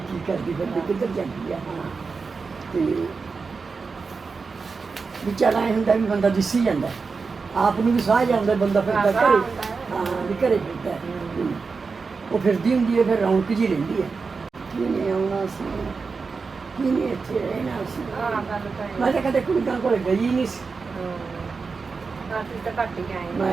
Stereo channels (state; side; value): quieter; left; 4.7 dB